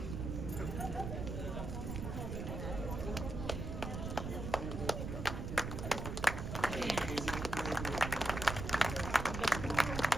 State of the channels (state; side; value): noise; right; rumble, 4 dB below the sound